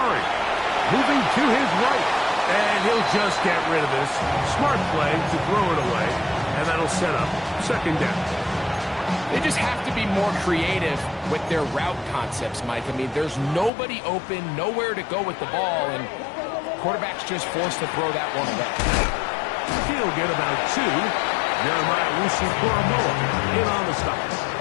Moving to his right. And he'll just get rid of this. Smart play to throw it away. And that'll set up second down. They just have to be more creative with their route concepts, Mike. I mean, there's nobody open, nowhere to go with the ball, and quarterback's just forced to throw that one away. He'll get about 2. Jeremiah Wusu-Koromoa in on the stop.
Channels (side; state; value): right; drops out; at 13.7 s